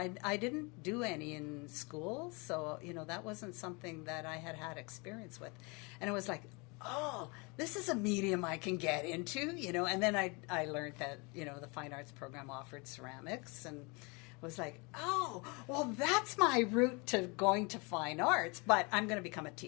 I didn't do any in school, so that wasn't something that I had experience with. And it was like, oh, this is a medium I can get into, And then I learned that the fine arts program offered ceramics, and was like, oh, well, that's my route to going to fine arts, but I'm going to become a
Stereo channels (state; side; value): quieter; right; 29.3 dB